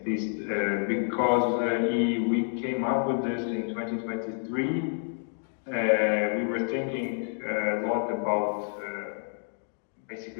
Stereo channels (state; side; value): silent; right; digital silence